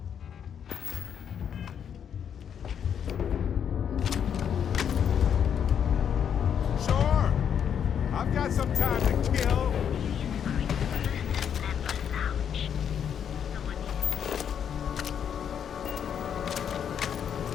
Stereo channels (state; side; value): quieter; right; 8.3 dB